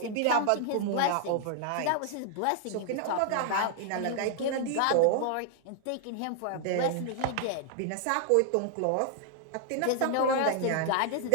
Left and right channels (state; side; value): different; both; correlation 0.00